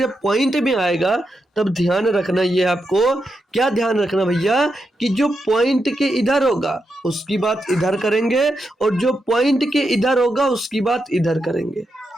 पॉइंट में आएगा तब ध्यान रखना, ये आपको क्या ध्यान रखना भैया कि जो पॉइंट के इधर होगा उसकी बात इधर करेंगे, और जो पॉइंट के इधर होगा उसकी बात इधर करेंगे,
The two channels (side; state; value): both; normal; correlation 0.85